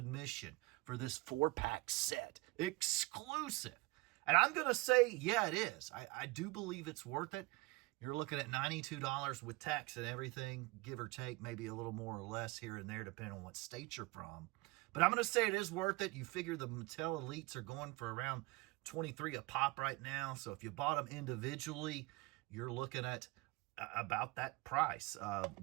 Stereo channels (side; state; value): left; quieter; 23.8 dB